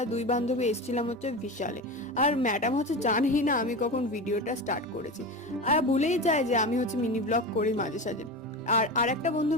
দুই বান্ধবী এসেছিলাম হচ্ছে বিশালে। আর ম্যাডাম হচ্ছে জানেই না আমি কখন ভিডিওটা স্টার্ট করেছি, আর ভুলেই যায় যে আমি হচ্ছে মিনি ব্লগ করি মাঝে সাঝে। আর আরেকটা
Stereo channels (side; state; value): both; normal; correlation 0.25